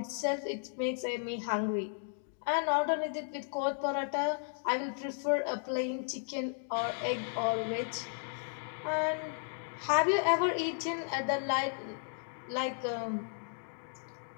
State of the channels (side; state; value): right; silent; digital silence